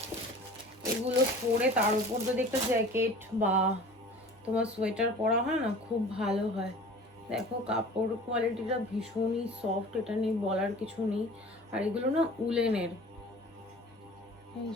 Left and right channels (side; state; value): both; normal; correlation 0.43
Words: এগুলো পরে তার উপর যদি একটা জ্যাকেট বা তোমার সোয়েটার পরা হয় না, খুব ভালো হয়। দেখো কাপড় কোয়ালিটিটা ভীষণই সফট, এটা নিয়ে বলার কিছু নেই। আর এগুলো না উলেনের। এই